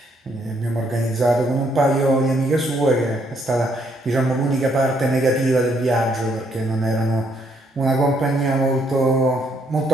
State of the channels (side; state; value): both; normal; correlation 0.71